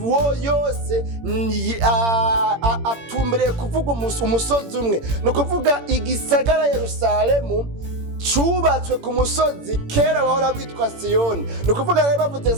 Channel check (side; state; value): left; late; 18 ms